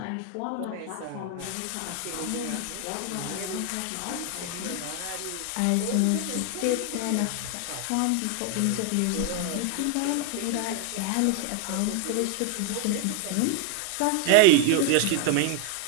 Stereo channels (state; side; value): different; both; correlation 0.00